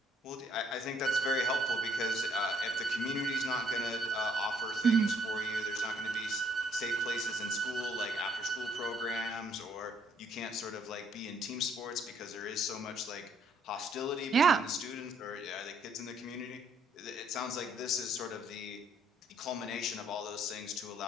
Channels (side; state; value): both; normal; correlation 0.66